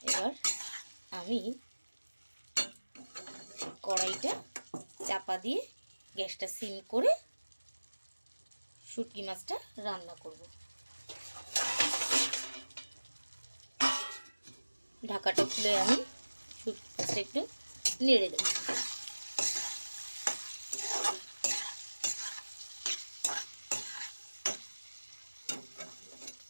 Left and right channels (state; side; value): inverted; both; correlation -1.00